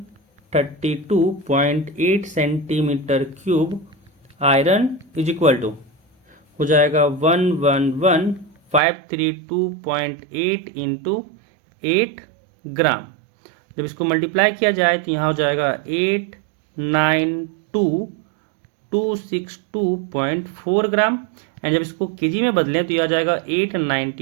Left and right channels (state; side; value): drops out; left; at 8.8 s